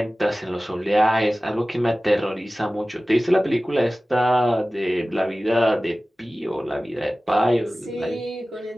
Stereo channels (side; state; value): both; normal; correlation 0.97